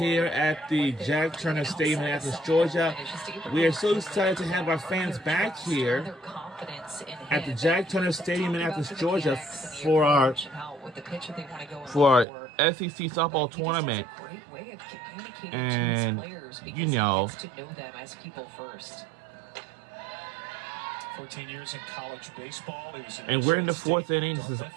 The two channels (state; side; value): drops out; left; at 12.2 s